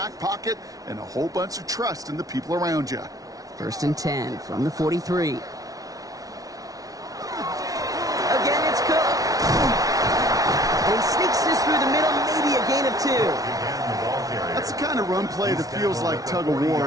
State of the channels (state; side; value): late; left; 0.18 ms